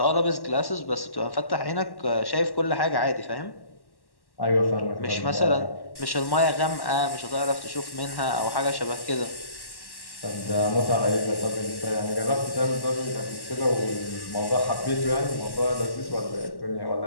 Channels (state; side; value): late; right; 1.1 ms